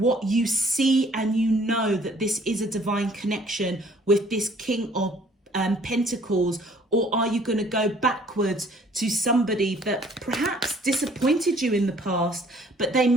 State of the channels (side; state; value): both; normal; correlation 0.58